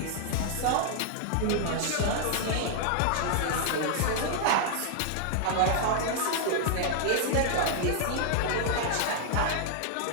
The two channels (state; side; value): different; both; correlation -0.01